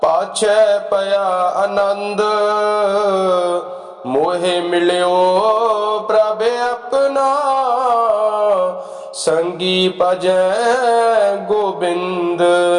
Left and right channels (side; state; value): both; identical; correlation 1.00